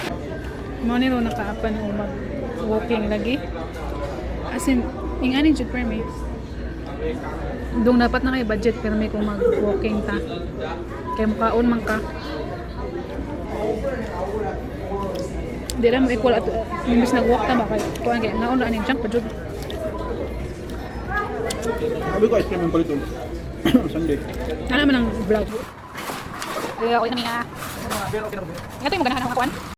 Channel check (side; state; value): both; identical; correlation 1.00